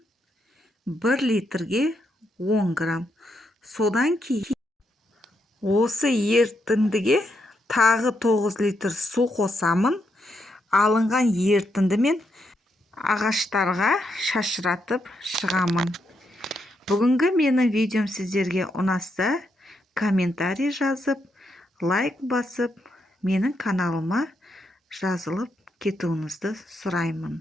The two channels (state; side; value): normal; both; correlation 0.80